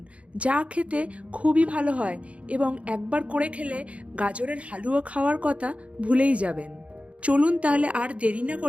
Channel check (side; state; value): left; late; 0.063 ms